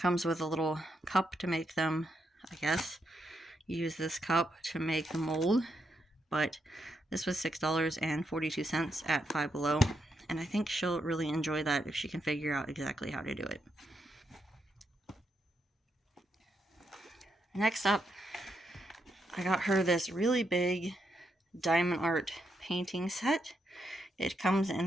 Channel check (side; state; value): both; normal; correlation 0.81